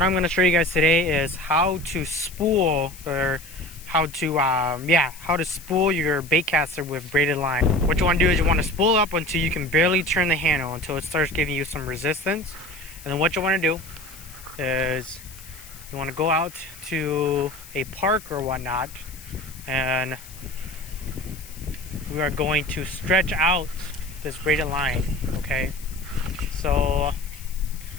I'm going to show you guys today is how to spool, or how to spool your bait caster with braided line. What you want to do is you want to spool up until you can barely turn the handle, until it starts giving you some resistance. And then what you want to do is you want to go out to a park or whatnot, and we are going to stretch out this braided line. Okay, so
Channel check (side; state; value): left; noise; hiss, 18 dB below the sound